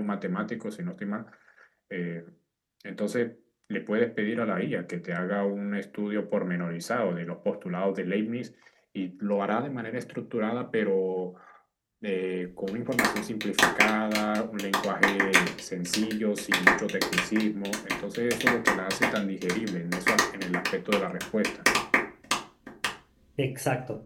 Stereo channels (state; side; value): identical; both; correlation 1.00